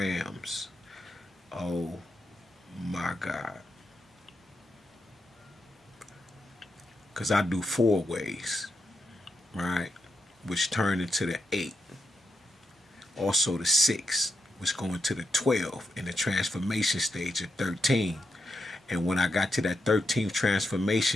Oh my God. Because I do four ways, right? Which turn into the eight. Also the six, which go into the 12 in the transformation stage of 13. And when I got to that 13th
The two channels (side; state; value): both; normal; correlation 0.84